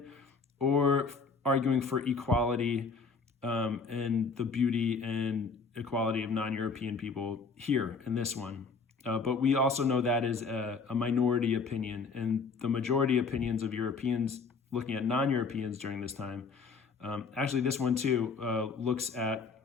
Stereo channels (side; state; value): right; quieter; 4.8 dB